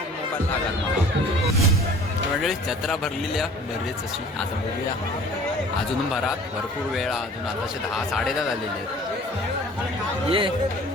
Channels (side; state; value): both; normal; correlation 0.48